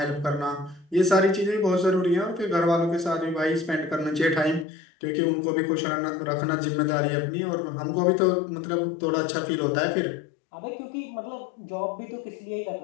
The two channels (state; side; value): drops out; right; at 4.7 s